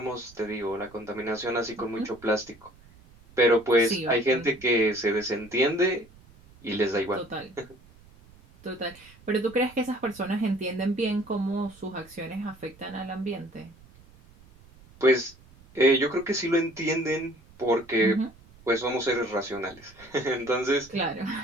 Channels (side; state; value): right; noise; rumble, 25 dB below the sound